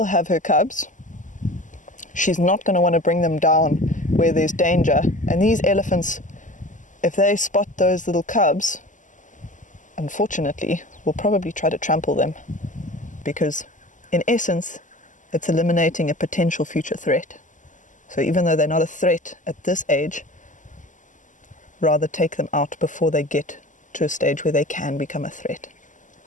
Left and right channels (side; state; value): right; late; 0.37 ms